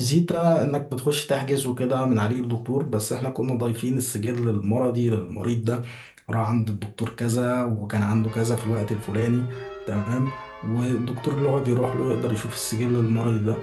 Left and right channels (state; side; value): identical; both; correlation 1.00